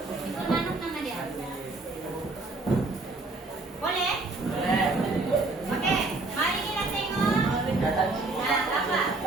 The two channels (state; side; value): quieter; left; 3.3 dB